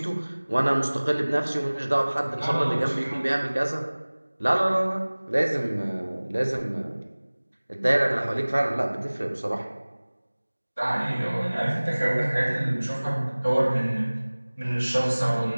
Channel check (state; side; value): inverted; both; correlation -1.00